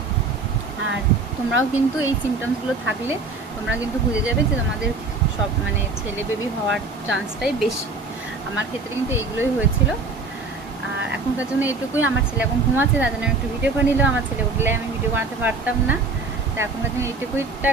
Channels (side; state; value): left; quieter; 3.8 dB